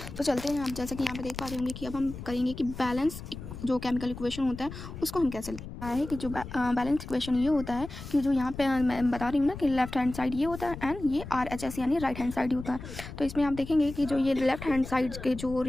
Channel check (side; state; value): left; noise; rumble, 11 dB below the sound